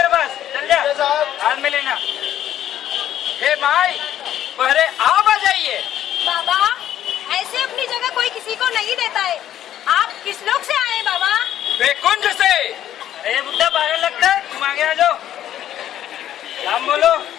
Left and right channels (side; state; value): right; quieter; 11.5 dB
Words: पास। चल जा, साहब। हाथ में लेना। हे भाई, पहले आप आ जाइए। बाबा ऐसे अपनी जगह कोई किसी को नहीं देता है। आप किस लोग से आए हैं बाबा? बेकुंज से। अरे बुड्ढा पागल लगता है, तुम आगे आ जाओ। नाम बोलो।